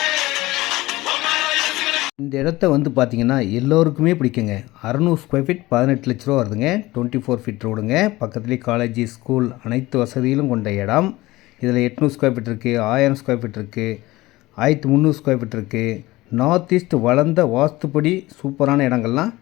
இந்த இடத்த வந்து பார்த்தீங்கன்னா எல்லோருக்குமே பிடிக்குங்க. 600 ஸ்கொயர் ஃபீட் 18 லட்ச ரூபா வருதுங்க. 24 ஃபீட் ரோடுங்க. பக்கத்துலேயே காலேஜ், ஸ்கூல் அனைத்து வசதியிலும் கொண்ட இடம். இதில் 800 ஸ்கொயர் ஃபீட் இருக்குது, 1000 ஸ்கொயர் ஃபீட் இருக்குது, 1300 ஸ்கொயர் ஃபீட் இருக்குது. நார்த் ஈஸ்ட் வளர்ந்த வாஸ்துப்படி சூப்பரான இடங்கள்லாம்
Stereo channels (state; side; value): quieter; right; 19.0 dB